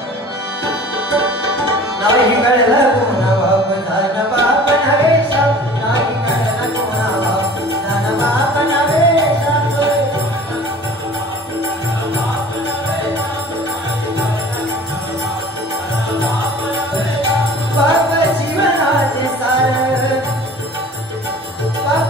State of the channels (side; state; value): both; normal; correlation 0.45